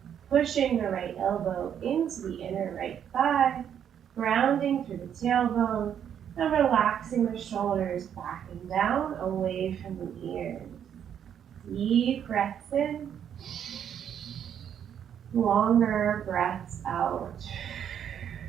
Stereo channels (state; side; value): quieter; left; 8.9 dB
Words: Pushing the right elbow into the inner right thigh, grounding through the tailbone, and relaxing the shoulders back and down away from the ears. Deep breaths in. Longer breaths out.